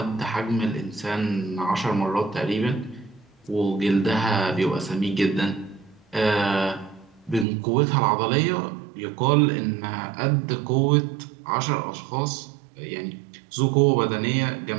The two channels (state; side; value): drops out; left; at 7.5 s